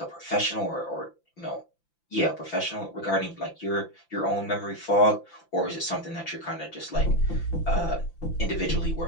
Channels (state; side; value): late; right; 5.9 ms